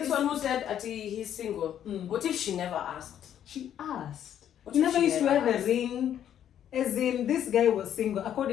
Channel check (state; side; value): quieter; right; 10.1 dB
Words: one who said he's single. Mm. What if she never asked? She asked. What He if never she used to never wear the asked? ring. As in, this guy was single.